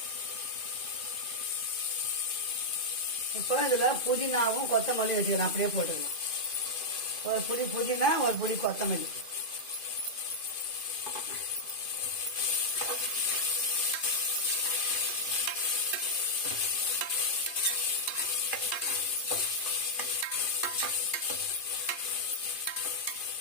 இப்போ இதில் புதினாவும் கொத்தமல்லி வச்சுக்கிறேன். அப்படியே போட்டுக்கலாம். ஒரு புடி புதினா, ஒரு புடி கொத்தமல்லி.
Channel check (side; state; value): right; late; 2.5 ms